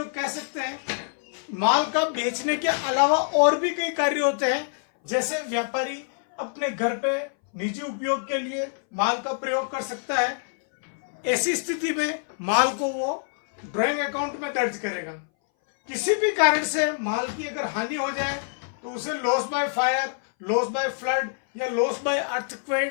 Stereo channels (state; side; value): silent; right; 60 dB below the other